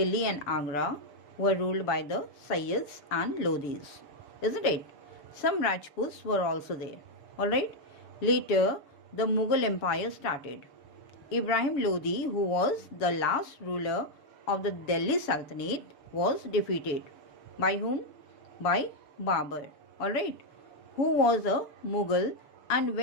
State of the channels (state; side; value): late; right; 6.7 ms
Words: and Agra were ruled by the Sayyids and Lodhis. Isn't it? Some Rajputs were also there. Alright? Later, the Mughal Empire started. Ibrahim Lodi, who was the last ruler of the Delhi Sultanate, was defeated. By whom? By Babur. Alright? Who was a Mughal, and